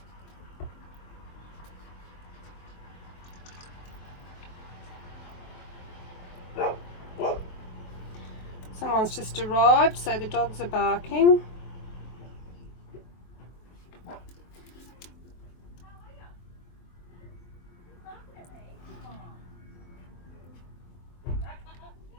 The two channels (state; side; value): late; right; 23 ms